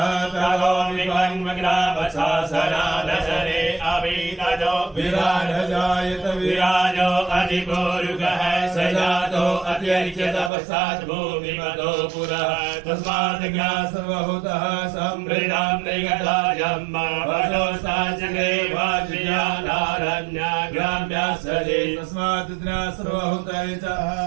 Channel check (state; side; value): drops out; left; at 10.5 s